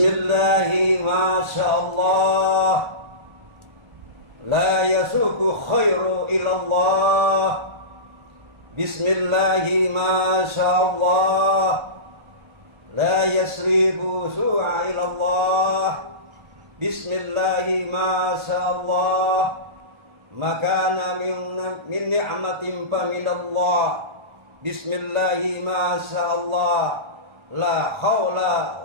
masyaallah, la yasuku khairu ilallah. Bismillahi masyaallah, la yasribu su'a ilallah. Bismillahi masyaallah, makana min ni'matin fa minallah. Bismillahi masyaallah, la haula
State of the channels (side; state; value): left; late; 1.3 ms